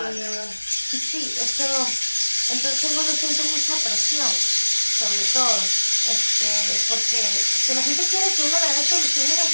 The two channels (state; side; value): inverted; both; correlation -1.00